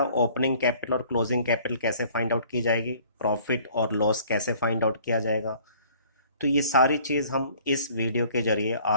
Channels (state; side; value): inverted; both; correlation -0.55